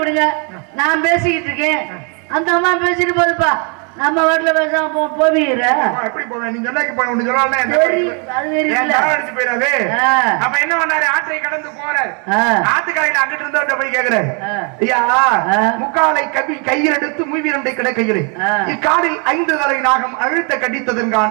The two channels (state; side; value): quieter; left; 36.3 dB